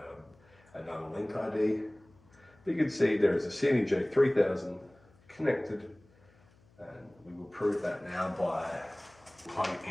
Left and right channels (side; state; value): left; noise; hum, 30 dB below the sound